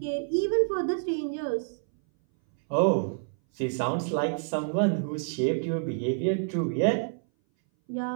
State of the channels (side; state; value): left; silent; 58 dB below the other